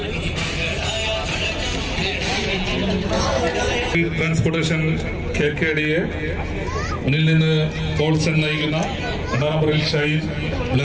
Transportation KKDയെ മുന്നിൽ നിന്ന് പോൾസൺ നയിക്കുന്ന 2ാം നമ്പറിൽ ഷൈൻ,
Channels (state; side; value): identical; both; correlation 1.00